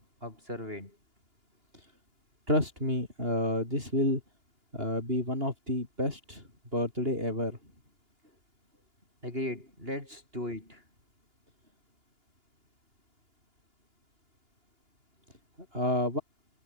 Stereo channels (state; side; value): late; left; 2.9 ms